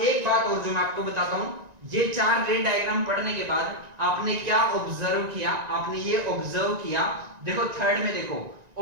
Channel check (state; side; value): late; left; 1.9 ms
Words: एक बात और जो मैं आपको बताता हूं, ये 4 रे डायग्राम पढ़ने के बाद आपने क्या ऑब्जर्व किया, आपने ये ऑब्जर्व किया, देखो थर्ड में देखो